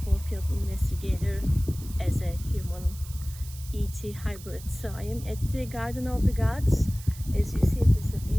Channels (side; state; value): right; noise; hiss, 17 dB below the sound